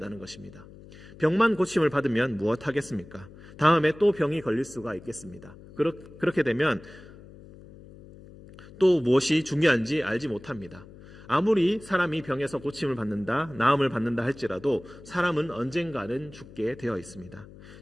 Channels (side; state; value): left; noise; hum, 19 dB below the sound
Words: 것입니다. 병만 고침을 받으면 무엇 하겠습니까? 다음에 또 병이 걸릴 수가 있겠습니다. 그렇게 되면 또 무엇이 중요한지 알지 못합니다. 아무리 사람이 병에서 고침을 받는다, 나음을 받는다 할지라도 사람은 언젠가는 죽게 되어 있습니다.